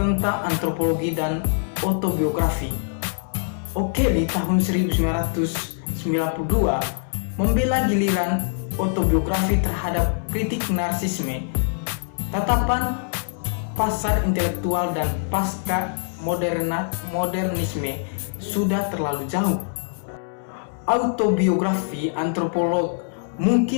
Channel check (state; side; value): silent; right; 63 dB below the other